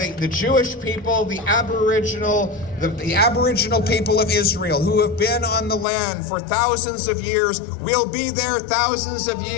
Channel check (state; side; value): drops out; right; at 5.9 s